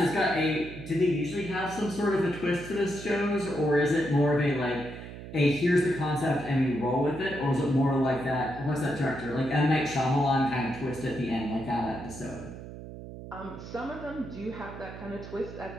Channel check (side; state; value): right; noise; hum, 12 dB below the sound